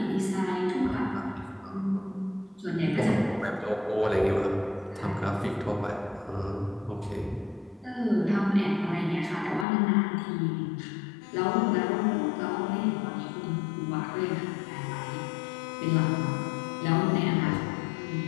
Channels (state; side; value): drops out; right; at 9.7 s